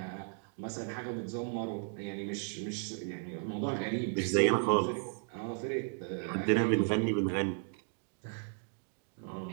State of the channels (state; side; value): silent; left; 54 dB below the other